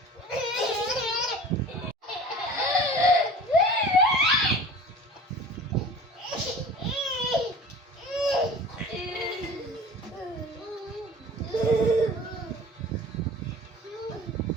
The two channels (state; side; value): normal; both; correlation 0.41